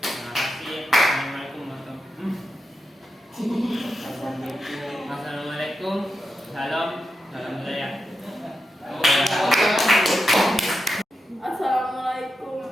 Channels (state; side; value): normal; both; correlation 0.88